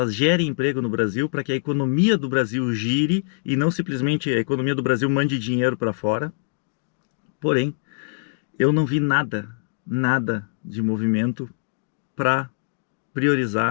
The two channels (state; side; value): silent; right; digital silence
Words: gerem emprego no Brasil, para que a economia do Brasil gire e não simplesmente a economia do Brasil mande dinheiro para fora. Porém, eu não vi nada de movimento para